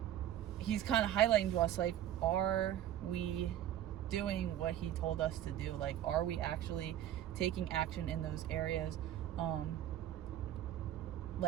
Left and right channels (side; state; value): left; quieter; 11.7 dB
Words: he's kind of highlighting to us, like, are we doing what he told us to do? Like, are we actually taking action in those areas?